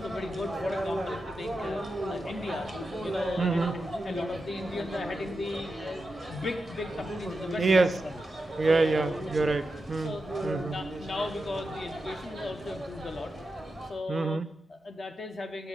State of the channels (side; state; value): both; normal; correlation 0.89